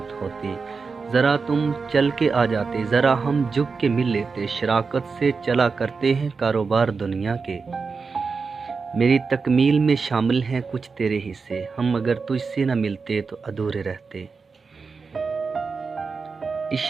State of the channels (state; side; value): quieter; left; 4.8 dB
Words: होती। ज़रा तुम चल के आ जाते, ज़रा हम झुक के मिल लेते, शराकत से चला करते हैं कारोबार दुनिया के। मेरी तकमील में शामिल हैं कुछ तेरे हिस्से, हम अगर तुझसे न मिलते तो अधूरे रहते।